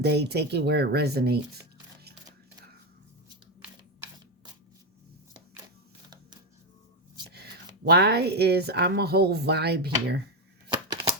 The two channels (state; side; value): normal; both; correlation 0.09